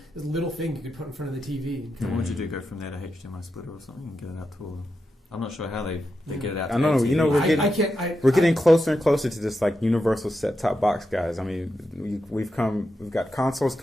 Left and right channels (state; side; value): normal; both; correlation 0.87